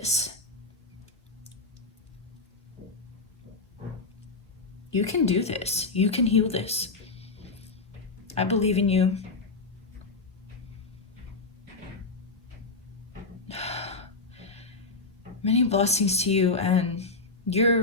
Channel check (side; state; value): right; quieter; 3.6 dB